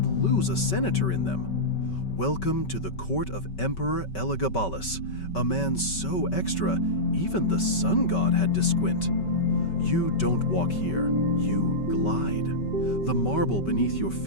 lose a senator in them. Welcome to the court of Emperor Elagabalus, a man so extra, even the sun god had to squint. You don't walk here, you glide. The marble beneath your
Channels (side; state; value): right; late; 5.3 ms